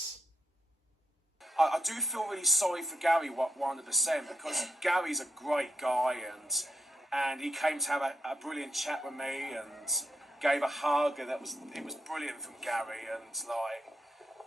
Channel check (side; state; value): both; normal; correlation 0.82